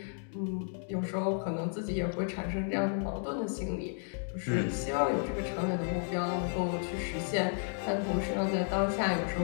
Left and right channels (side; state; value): right; silent; 56 dB below the other